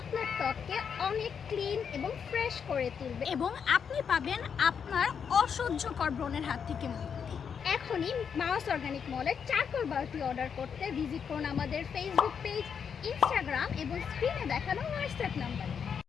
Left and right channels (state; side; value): quieter; right; 7.0 dB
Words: ত্বককে অনেক ক্লিন এবং ফ্রেশ করে তুলবে এবং আপনি পাবেন আপনার অসহ্যকর ব্রণের হাত থেকে মুক্তি। এখনই মাউস অর্গানিক মলের চারকোল বারটি অর্ডার করতে ভিজিট করুন আমাদের ফেসবুক পেজ, ইনস্টাগ্রাম এবং স্ক্রিনে দেখানো হোয়াটসঅ্যাপ নাম্বারে।